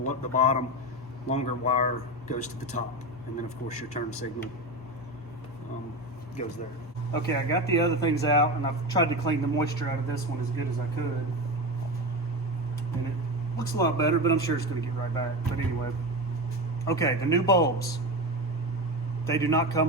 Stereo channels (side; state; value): both; normal; correlation 0.21